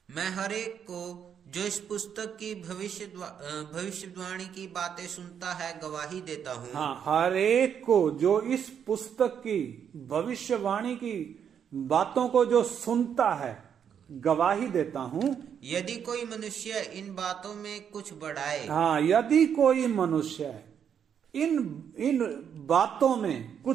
मैं हर एक को जो इस पुस्तक की भविष्यवाणी की बातें सुनता है गवाही देता हूँ। हाँ, हर एक को जो इस पुस्तक की भविष्यवाणी की बातों को जो सुनता है गवाही देता हूँ। यदि कोई मनुष्य इन बातों में कुछ बढ़ाए, हाँ, यदि कोई मनुष्य इन बातों में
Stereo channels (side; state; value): left; quieter; 8.1 dB